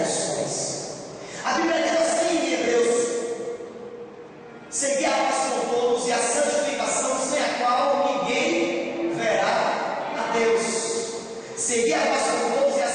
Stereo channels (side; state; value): both; identical; correlation 1.00